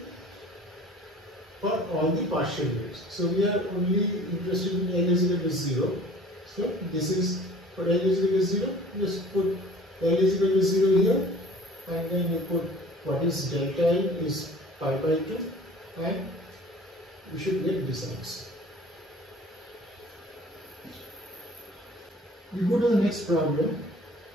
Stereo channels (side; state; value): both; normal; correlation 0.48